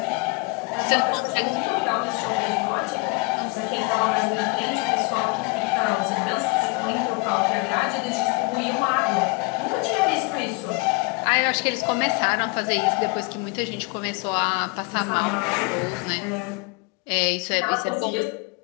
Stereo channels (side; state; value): right; quieter; 27.6 dB